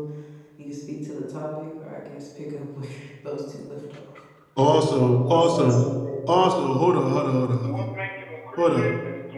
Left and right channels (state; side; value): identical; both; correlation 1.00